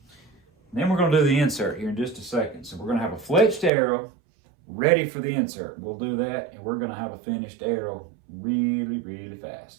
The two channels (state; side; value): drops out; left; at 3.7 s